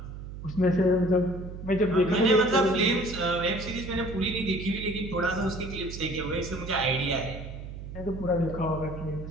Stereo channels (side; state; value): right; noise; hum, 10 dB below the sound